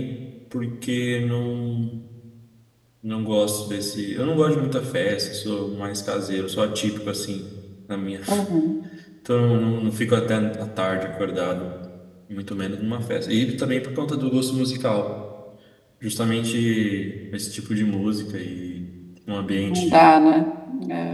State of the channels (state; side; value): identical; both; correlation 1.00